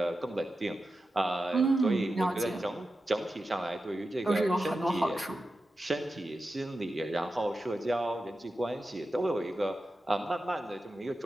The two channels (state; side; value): normal; both; correlation 0.92